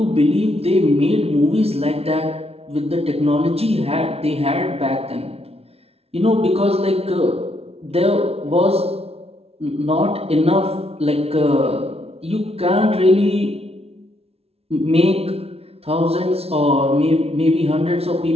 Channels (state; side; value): late; left; 0.30 ms